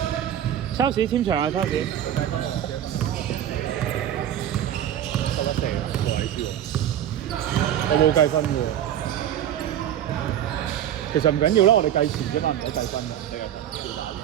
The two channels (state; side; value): quieter; left; 10.8 dB